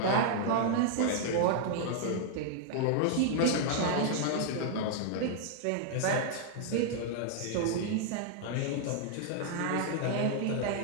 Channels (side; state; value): both; different; correlation -0.01